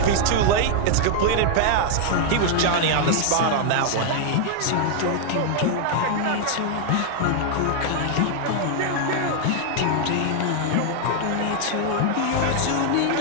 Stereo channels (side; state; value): both; different; correlation 0.00